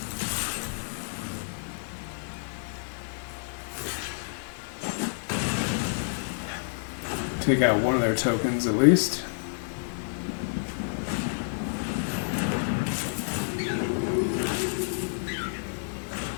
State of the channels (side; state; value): right; silent; digital silence